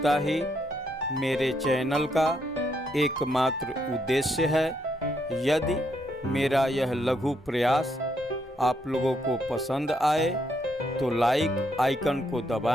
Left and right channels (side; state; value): both; normal; correlation 0.76